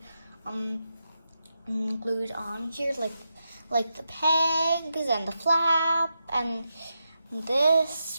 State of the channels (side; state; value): both; inverted; correlation -0.86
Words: glued on here, like the pegs and the flap and this.